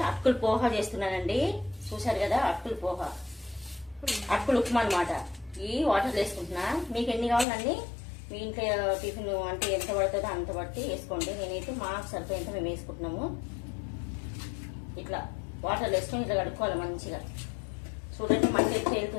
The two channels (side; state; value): right; drops out; at 7.5 s